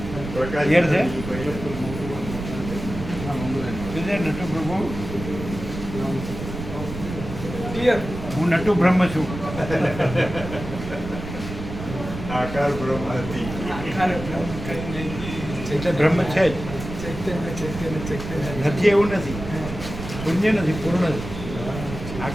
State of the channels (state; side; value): noise; right; rumble, 9 dB below the sound